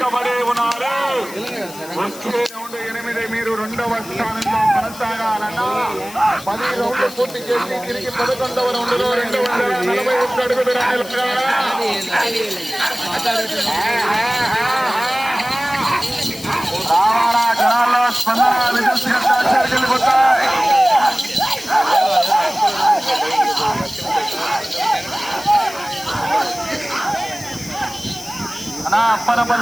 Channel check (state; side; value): noise; left; hiss, 16 dB below the sound